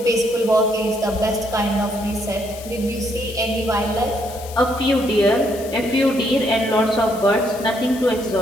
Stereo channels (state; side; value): noise; left; hiss, 16 dB below the sound